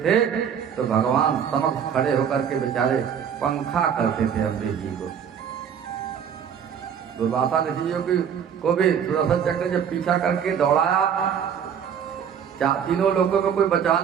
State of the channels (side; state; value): left; quieter; 8.0 dB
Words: थे। तो भगवान समक्ष खड़े होकर के बेचारे पंखा करते थे अम्बरीश जी को। दुर्वासा ऋषि को भी सुदर्शन चक्र जब पीछा करके दौड़ाया, तीनों लोगों में कोई